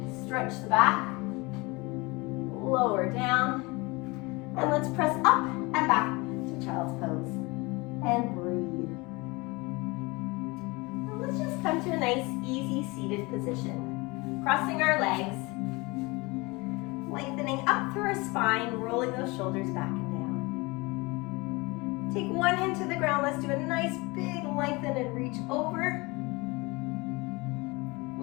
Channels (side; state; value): right; quieter; 24.9 dB